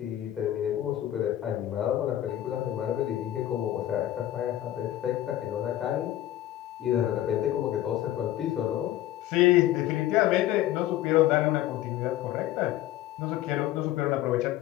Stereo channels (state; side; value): quieter; right; 13.4 dB